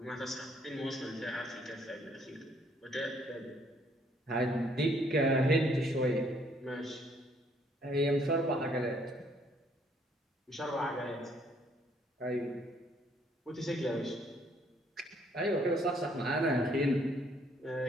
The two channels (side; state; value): both; normal; correlation 0.65